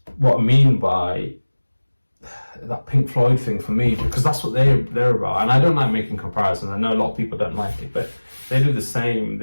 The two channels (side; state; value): both; inverted; correlation -1.00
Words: what I mean by that Pink Floyd thing for me, because that's what they're about. And I don't like making comparisons. I know a lot of people don't like it, but they do the same.